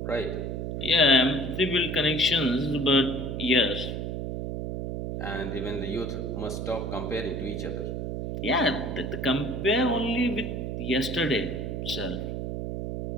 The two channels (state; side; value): noise; right; hum, 4 dB below the sound